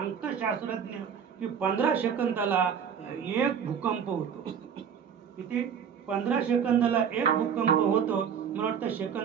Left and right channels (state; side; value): quieter; left; 7.6 dB